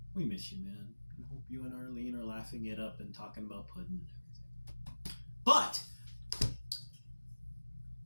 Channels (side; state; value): both; inverted; correlation -1.00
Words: we miss you, man. I hope you and Arlene are laughing it up and talking about pudding and everything. But